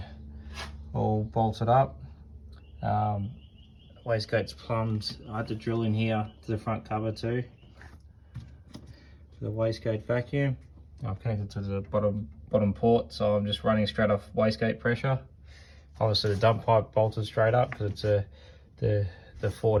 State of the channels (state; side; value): identical; both; correlation 1.00